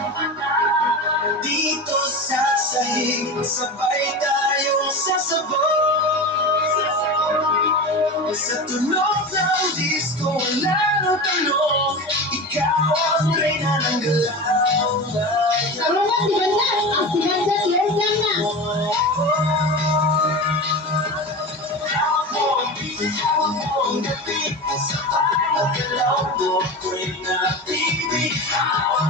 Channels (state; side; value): normal; both; correlation 0.27